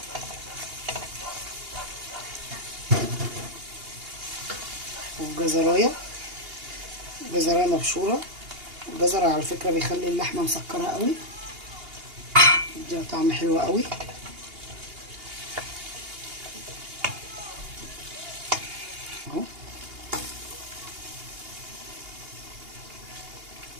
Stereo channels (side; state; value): left; late; 2.8 ms